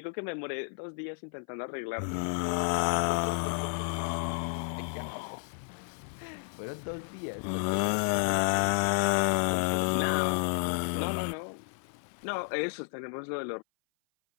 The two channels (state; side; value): silent; right; 56 dB below the other